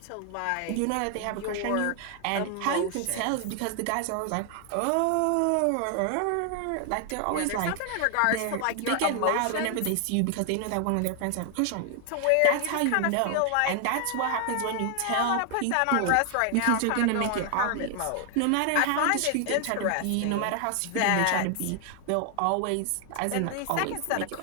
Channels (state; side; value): different; both; correlation 0.00